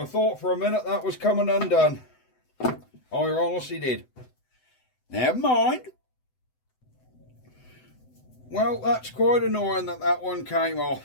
thought for a minute that was coming undone. I honestly did. Never mind. Well, that's quite annoying that that one came off.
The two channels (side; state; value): right; late; 7.9 ms